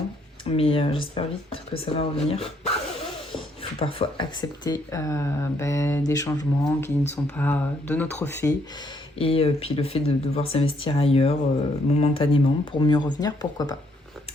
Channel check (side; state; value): both; normal; correlation 0.70